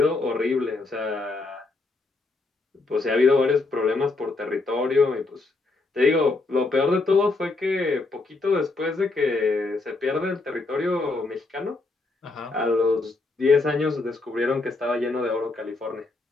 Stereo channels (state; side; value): quieter; right; 3.5 dB